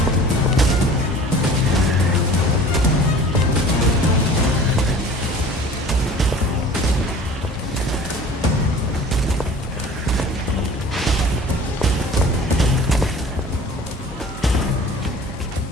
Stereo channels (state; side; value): normal; both; correlation 0.44